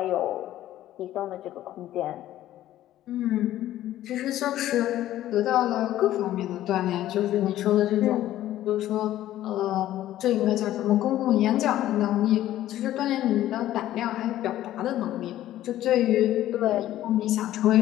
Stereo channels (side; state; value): right; quieter; 13.5 dB